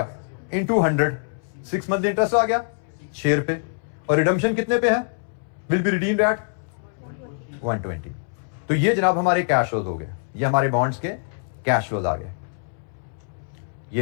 इंटू 100, 6 मंथली इंटरेस्ट आ गया शेयर पे। और रिडम्पशन कितने पे है? Will be redeemed eight 120। तो ये जनाब हमारे कैश फ्लोज हो गए, ये हमारे बॉन्ड्स के कैश फ्लोज आ गए। ये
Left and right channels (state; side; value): silent; right; 62 dB below the other